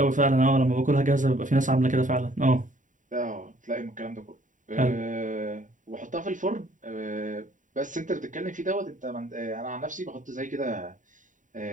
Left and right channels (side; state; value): left; late; 0.37 ms